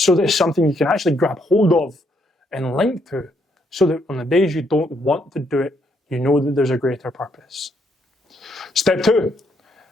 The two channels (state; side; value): normal; both; correlation 0.73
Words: that it's something you can actually grab hold of and link to, so that on the days you don't want to do it, you know that there's a greater purpose. Step 2,